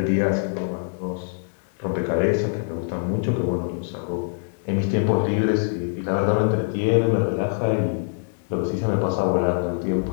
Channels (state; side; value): silent; right; digital silence